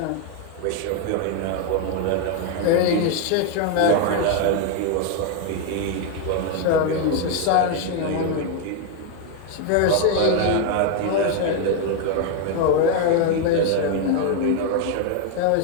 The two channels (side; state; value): both; different; correlation 0.01